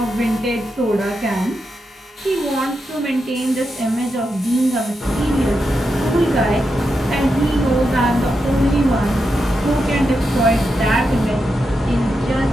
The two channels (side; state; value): both; normal; correlation 0.86